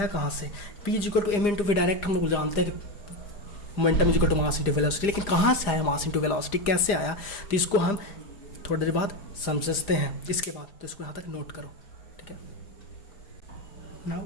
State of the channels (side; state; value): right; late; 4.9 ms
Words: कहाँ से। p is equal to m into v direct हम लोग जानते हैं momentum is equal to mass into velocity. लेकिन कहाँ से आया मास इंटू वेलोसिटी, कैसे आया? तो इसको हम थोड़ी देर बाद समझते हैं इसके बाद। तो इसको यहाँ तक नोट करो। ठीक है,